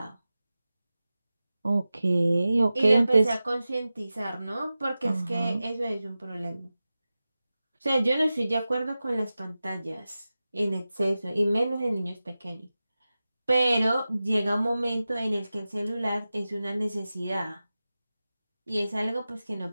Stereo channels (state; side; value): inverted; both; correlation -0.95